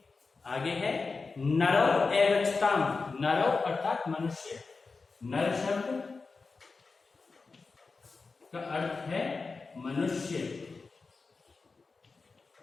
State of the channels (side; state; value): right; quieter; 4.2 dB